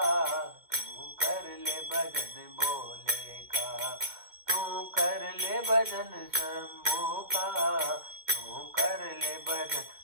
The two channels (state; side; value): late; left; 2.1 ms